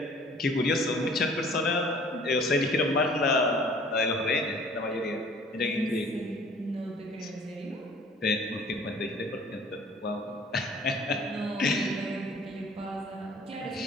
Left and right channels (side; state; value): both; normal; correlation 0.52